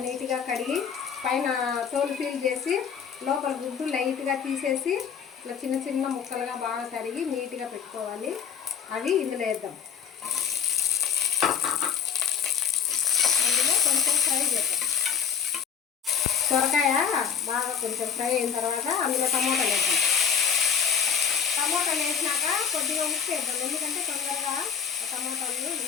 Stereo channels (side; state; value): right; quieter; 7.6 dB